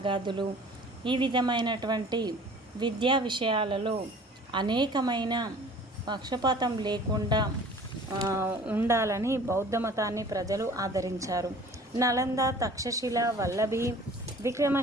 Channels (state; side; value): normal; both; correlation 0.48